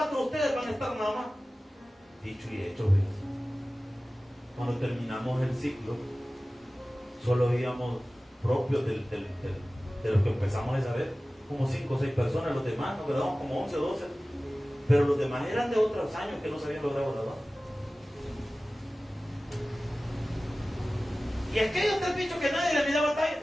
de ustedes van a estar nada más. Dicho y hecho, ¿ves? Cuando terminamos el ciclo, solo íbamos propios de los que empezamos a saber, como 5 o 6 personas. Los demás nos quedamos como 11 o 12. Pero los demás eran de otros años que no se habían logrado graduar. Y aquellos 3 bichos que nadie le miraba batalla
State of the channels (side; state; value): both; normal; correlation 0.97